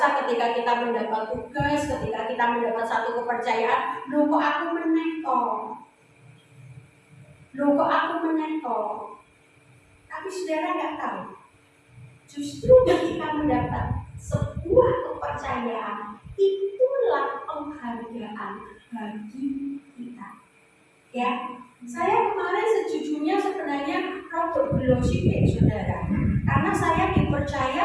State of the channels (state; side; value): identical; both; correlation 1.00